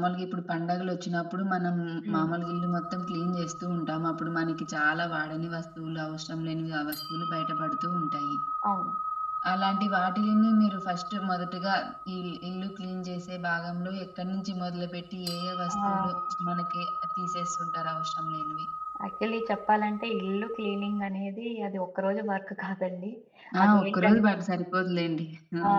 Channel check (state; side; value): identical; both; correlation 1.00